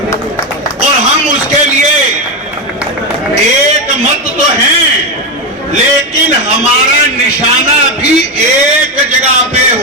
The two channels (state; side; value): normal; both; correlation 0.10